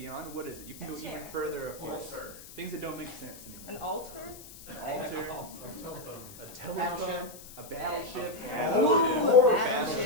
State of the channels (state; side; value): noise; left; hiss, 17 dB below the sound